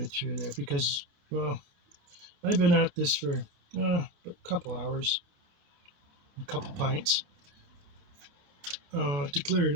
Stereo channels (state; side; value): late; left; 29 ms